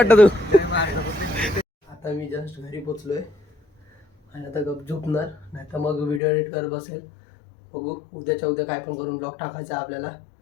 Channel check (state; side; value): drops out; right; at 6.2 s